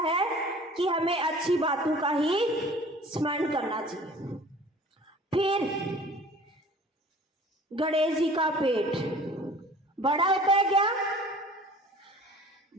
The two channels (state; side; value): normal; both; correlation 0.46